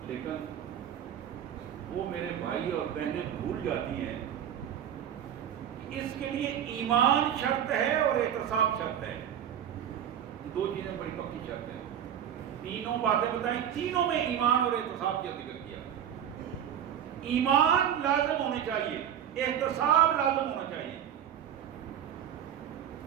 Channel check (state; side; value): quieter; left; 9.7 dB